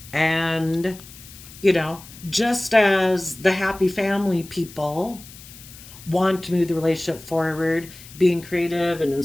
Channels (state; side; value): noise; left; hiss, 18 dB below the sound